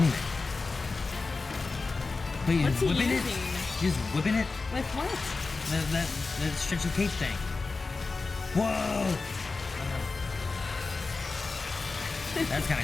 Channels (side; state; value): right; quieter; 3.9 dB